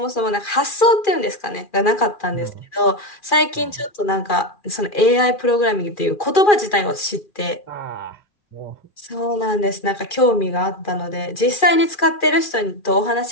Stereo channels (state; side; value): late; right; 2.4 ms